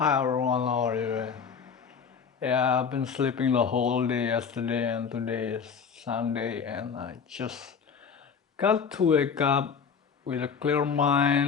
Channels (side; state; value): right; quieter; 6.3 dB